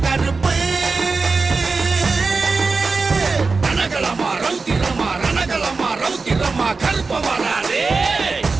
கருப்பு ரணகலமா ரௌத்திரமா ரணகலமா ரௌத்திரமா கருப்ப வராதே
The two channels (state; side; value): quieter; left; 4.2 dB